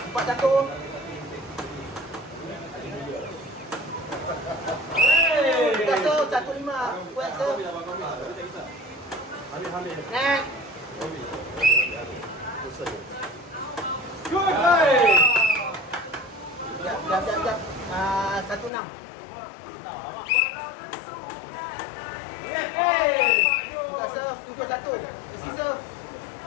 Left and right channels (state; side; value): drops out; right; at 18.7 s